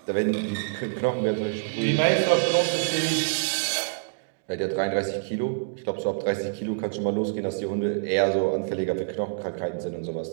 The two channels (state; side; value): silent; left; digital silence